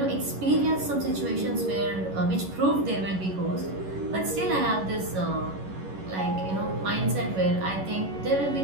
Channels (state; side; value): late; left; 11 ms